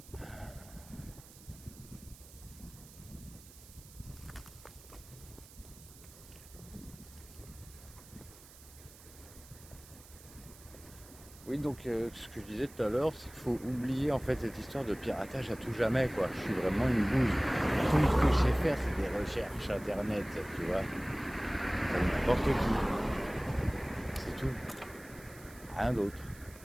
Oui, donc ce que je disais tout à l'heure, c'est qu'il faut oublier en fait cette histoire de piratage à tout jamais, quoi. Je suis vraiment une bouse. Tout ce que je sais faire, c'est des recherches internet, tu vois. Comme n'importe qui. C'est tout. Rien d'autre.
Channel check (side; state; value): right; noise; hiss, 20 dB below the sound